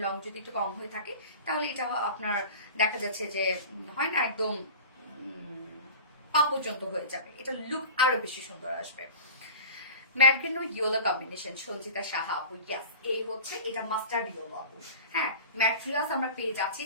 লং যদি একটু কম হয়ে থাকে তাহলে এটা আপনার দেখা যাচ্ছে যে হয় না একদম পা পর্যন্ত হয়ে যাবে, এটা লুক আরো বেশি সুন্দর আসবে। ম্যাটগ্রিন ও ইয়েলো কম্বিনেশন, সঞ্চিতা সাহা আপু। ইয়াস, এই হচ্ছে এটা মাস্টার্ড ইয়েলো আপু। হ্যাঁ, ম্যাটেরিয়ালস আমরা পেয়ে যাচ্ছি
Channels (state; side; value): inverted; both; correlation -0.36